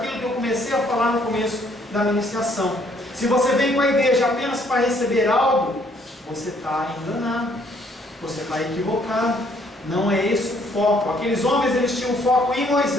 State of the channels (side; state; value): both; normal; correlation 0.65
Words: que eu comecei a falar no começo da ministração. Se você vem para a igreja apenas para receber algo, você está enganado, você está equivocado. Não é esse o foco. Aqueles homens, eles tinham foco em